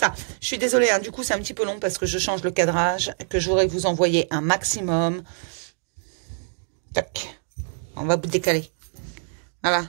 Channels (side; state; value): left; silent; digital silence